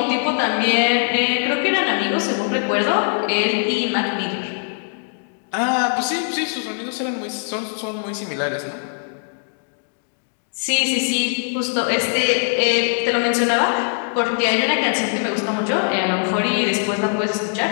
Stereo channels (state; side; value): silent; right; 60 dB below the other